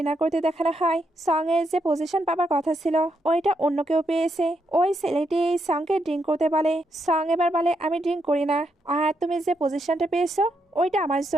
করতে দেখানো হয়। সং এর যে পজিশন পাবার কথা ছিল ওইটা অন্য কেউ পেয়েছে। ওই ছেলেটি সংকে ড্রিঙ্ক করতে বলে। সং এবার বলে আমি ড্রিঙ্ক করি না, আর তুমি যে পজিশনটা পেয়েছো ওইটা আমার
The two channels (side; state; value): both; normal; correlation 0.80